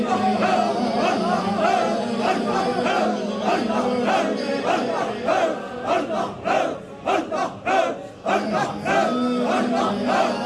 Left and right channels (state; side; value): identical; both; correlation 1.00